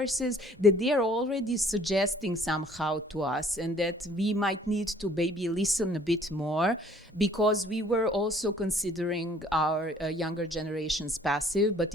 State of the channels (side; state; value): both; normal; correlation 0.56